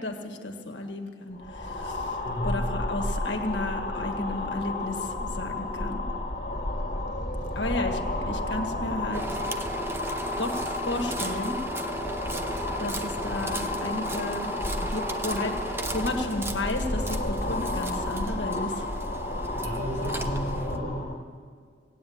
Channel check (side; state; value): both; normal; correlation 0.34